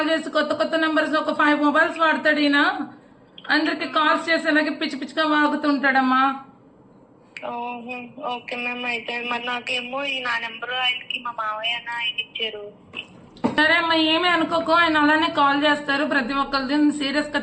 చేసి కొత్త కొత్త నెంబర్స్ ఒక 5 మొబైల్స్ వాడతాడు ఈయన. అందరికి కాల్స్ చేసి ఇలాగే పిచ్చి పిచ్చిగా వాగుతుంటాడమ్మా. Okay ma'am. అయితే మరి నాకేమో నా నెంబర్ ఆయనకి మా మావయ్య ఆయన ఇచ్చారు. సరే అమ్మా, ఏమీ అనుకోకు, ఆయన అలానే కాల్ చేస్తారు ప్రతి ఒక్కరిది, సీరియస్ గా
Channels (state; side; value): identical; both; correlation 1.00